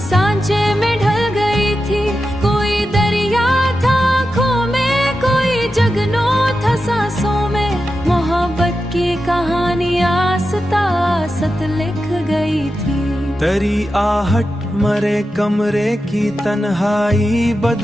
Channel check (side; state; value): both; normal; correlation 0.90